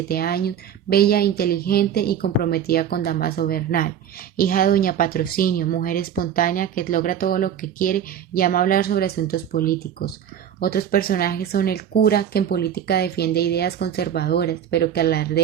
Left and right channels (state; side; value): quieter; left; 9.1 dB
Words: años, bella, inteligente y comprometida con Damaso Bernal, hija de doña Patrocinio, mujer espontánea que logra todo lo que quiere y ama hablar sobre asuntos políticos. Otros personajes son el cura, que en política defiende ideas conservadoras, pero que